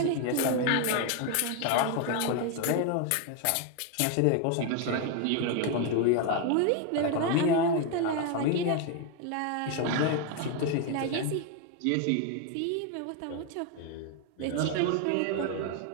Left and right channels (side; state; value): both; different; correlation 0.01